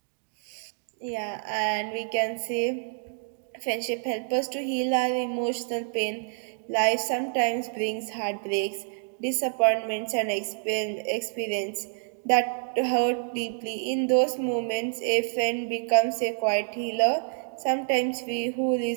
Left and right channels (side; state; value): left; silent; digital silence